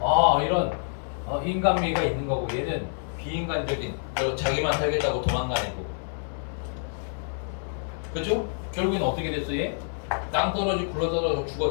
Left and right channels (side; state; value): right; silent; digital silence